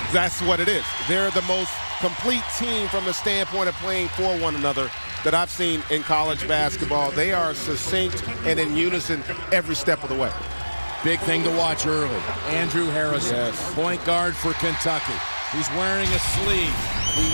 That's what it is. They're the most complete team from the standpoint of playing for one another that I've seen in college basketball. They are succinct and in unison every step of the way. Big thing to watch early. Andrew Harrison, yes, point guard for Kentucky. He's wearing a sleeve.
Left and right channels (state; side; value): inverted; both; correlation -1.00